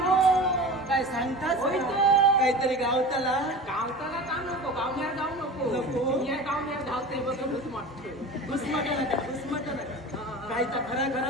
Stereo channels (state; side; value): normal; both; correlation 0.34